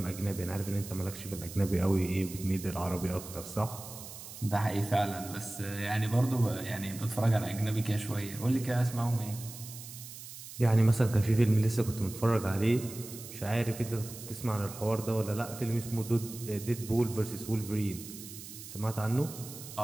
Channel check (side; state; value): right; noise; hiss, 13 dB below the sound